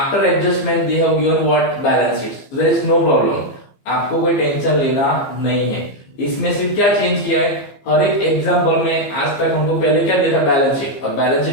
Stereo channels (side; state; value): right; late; 15 ms